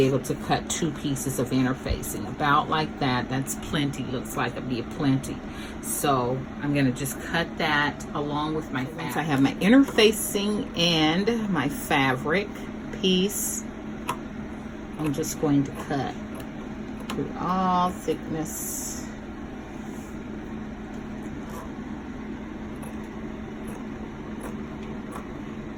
able to cut 2 pieces of interfacing, about like that. That's plenty, looks like it'll be plenty. So I'm going to just cut that along with my fabric. Once I have my interfacing and my fabric piece, I'm just going to cut through all thickness.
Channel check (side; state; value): both; identical; correlation 1.00